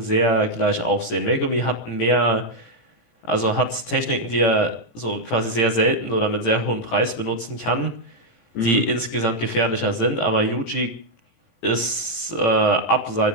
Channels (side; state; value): right; late; 18 ms